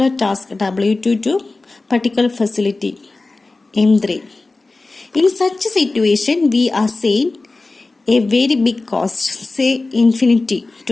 to particular facility M3. In such a situation, we assign a very big cost, say infinity,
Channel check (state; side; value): quieter; right; 3.4 dB